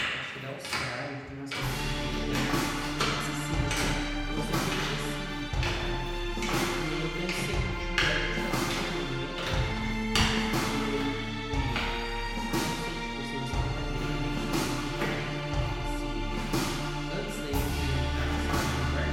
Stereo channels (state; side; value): identical; both; correlation 1.00